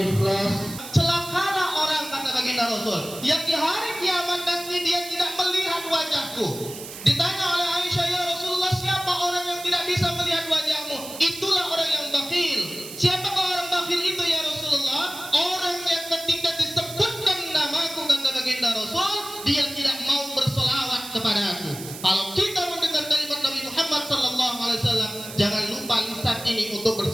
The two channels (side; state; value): right; noise; hiss, 12 dB below the sound